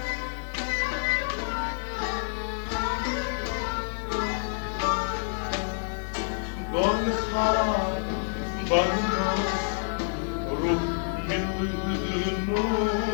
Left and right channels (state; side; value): silent; right; 59 dB below the other